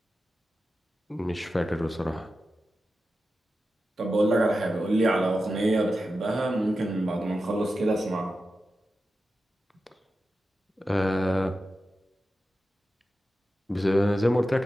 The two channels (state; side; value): normal; both; correlation 0.92